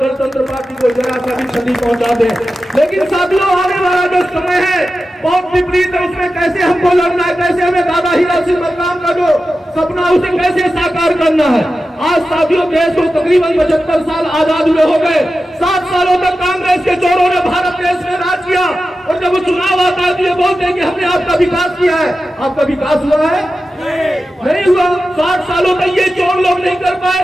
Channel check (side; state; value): both; normal; correlation 0.92